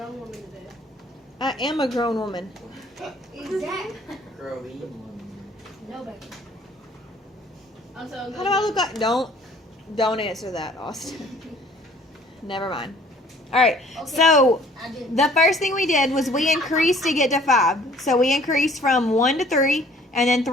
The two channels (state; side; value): normal; both; correlation 0.55